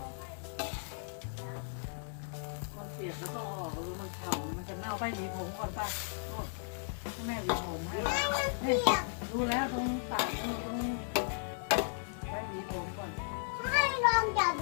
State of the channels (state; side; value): silent; right; 54 dB below the other